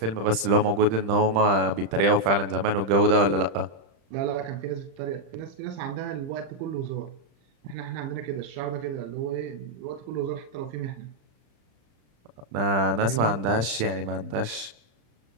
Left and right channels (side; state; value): left; late; 35 ms